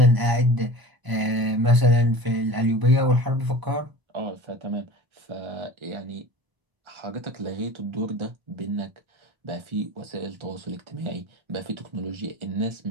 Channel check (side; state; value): left; late; 1.0 ms